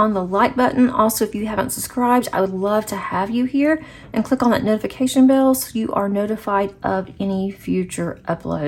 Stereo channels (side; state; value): both; identical; correlation 1.00